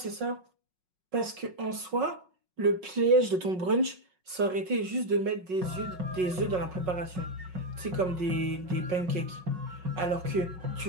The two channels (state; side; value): late; left; 5.4 ms